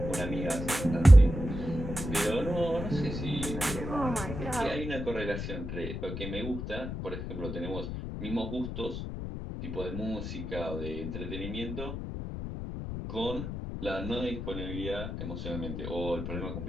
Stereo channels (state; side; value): noise; left; rumble, 6 dB below the sound